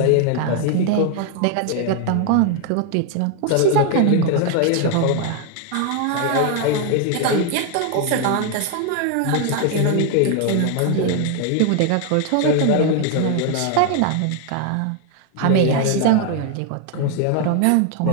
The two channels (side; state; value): both; different; correlation 0.01